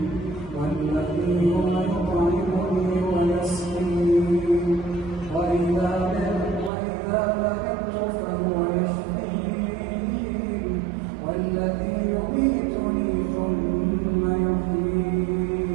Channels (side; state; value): left; drops out; at 6.7 s